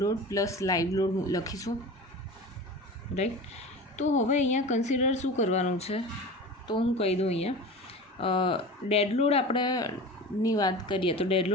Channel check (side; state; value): both; normal; correlation 0.33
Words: load plus live load લખીશું, રાઈટ. તો હવે અહીંયા કન્સિડર શું કરવાનું છે, તો હું કહી દઉં અહીંયા ડેડ લોડ આપણેની વાત કરીએ તો ડેડ